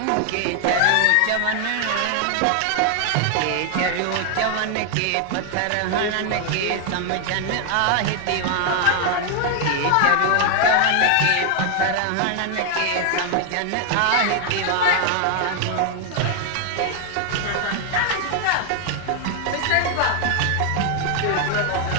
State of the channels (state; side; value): different; both; correlation 0.00